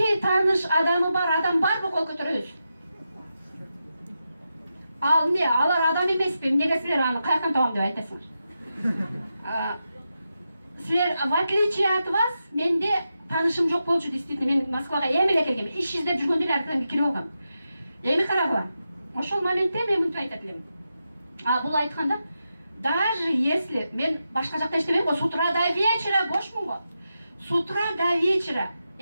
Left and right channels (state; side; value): inverted; both; correlation -0.88